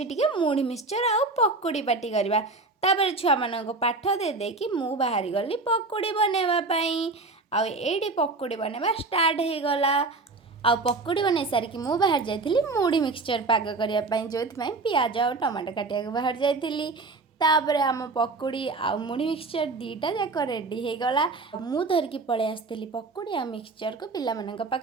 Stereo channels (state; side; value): quieter; left; 3.6 dB